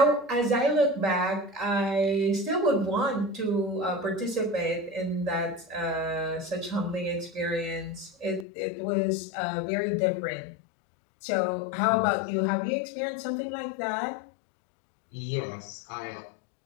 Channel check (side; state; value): right; drops out; at 8.5 s